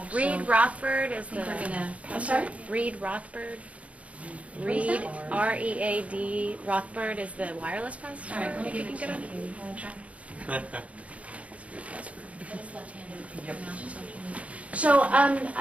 Reed Rothbard is the. I'm sorry? Reed Rothbard. Reed, R-E-A-D, Rothbard is the wireless pastor. All right, let me if you give can it get to you. Want to try? So,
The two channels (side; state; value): left; late; 0.066 ms